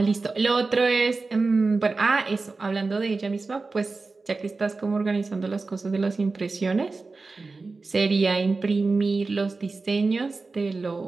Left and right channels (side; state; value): left; quieter; 3.9 dB